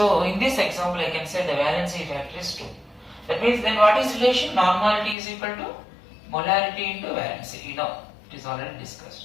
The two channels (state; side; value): drops out; right; at 5.2 s